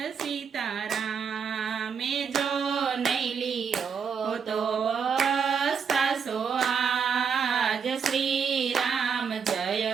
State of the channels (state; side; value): quieter; left; 6.5 dB